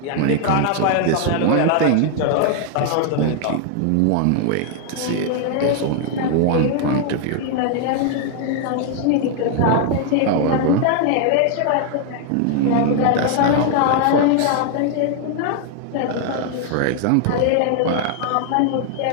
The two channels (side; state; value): both; different; correlation 0.00